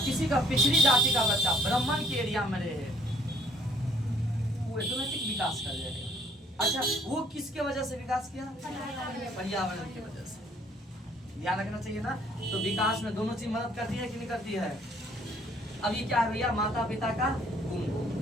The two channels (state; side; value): normal; both; correlation 0.61